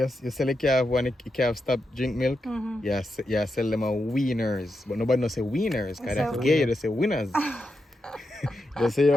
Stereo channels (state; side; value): normal; both; correlation 0.86